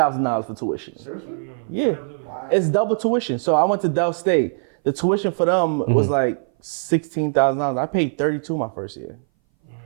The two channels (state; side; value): silent; left; 60 dB below the other